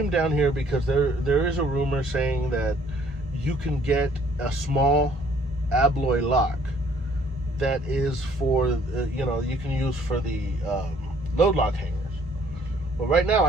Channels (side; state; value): both; normal; correlation 0.60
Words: down here because there is a rumor saying that you can get a small alloy lock that is for, you know, you can use for the load lock hangers. Well, right now